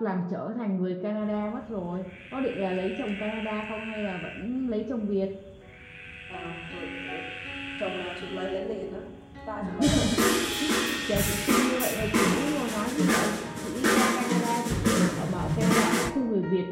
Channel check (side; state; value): both; identical; correlation 1.00